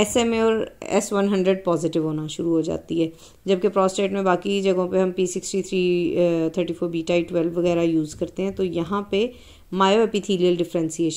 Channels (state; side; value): identical; both; correlation 1.00